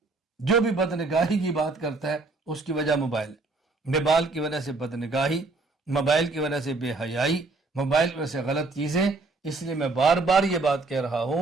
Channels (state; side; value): quieter; left; 3.5 dB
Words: جو بھی بد نگاہی کی بات کرتا ہے اس کی وجہ موبائل ہے۔ موبائل کی وجہ سے بد نگاہی، موبائل کی وجہ سے بے حیائی، موبائل کی وجہ سے غلط چیزیں۔ اس لیے میں بار بار یہ بات کہہ رہا